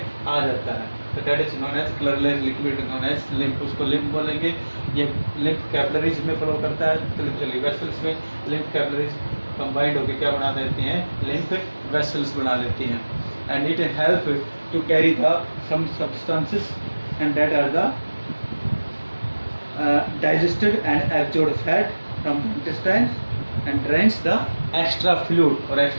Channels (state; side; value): inverted; both; correlation -1.00